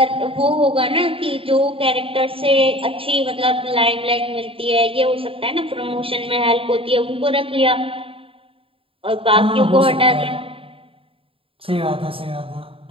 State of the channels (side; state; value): left; late; 0.27 ms